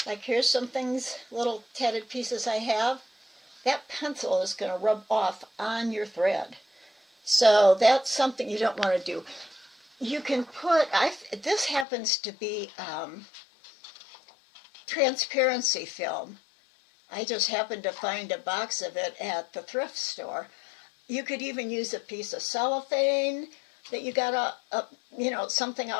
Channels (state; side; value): drops out; right; at 11.9 s